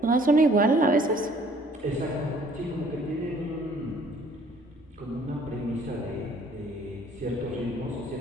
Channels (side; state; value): both; normal; correlation 0.58